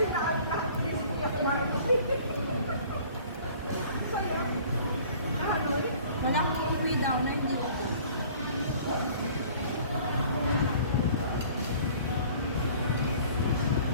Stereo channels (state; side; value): inverted; both; correlation -0.50